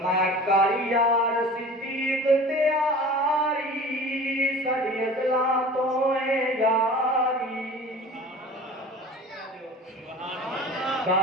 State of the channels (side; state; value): both; normal; correlation 0.40